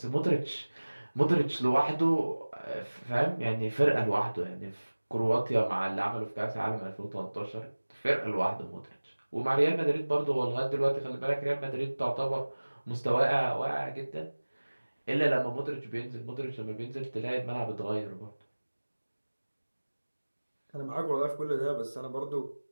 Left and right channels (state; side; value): inverted; both; correlation -1.00